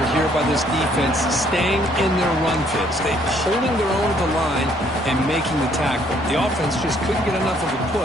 here by this defense, staying in their run fits. They holding their own at the line and making the tackle. The offense just couldn't get enough of a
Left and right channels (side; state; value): both; normal; correlation 0.65